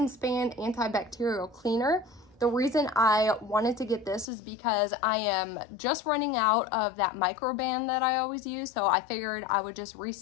Span antibacterial cleaner. The reason I wanted to get this is because I am just running out of that microban that I always use, so I figured I would just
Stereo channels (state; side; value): drops out; right; at 4.2 s